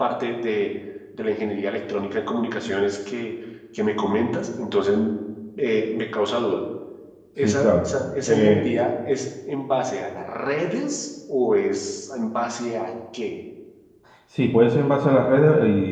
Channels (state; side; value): identical; both; correlation 1.00